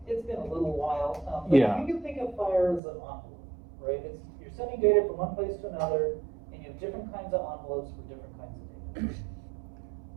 been a little while, but Yeah. you can think of FHIR as an envelope, right? You're sending data from one place to another, and you have different kinds of envelopes for different kinds of data.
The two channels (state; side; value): drops out; left; at 2.8 s